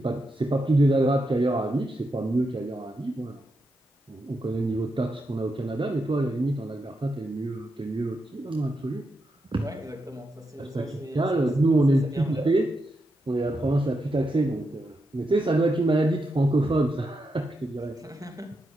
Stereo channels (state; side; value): normal; both; correlation 0.85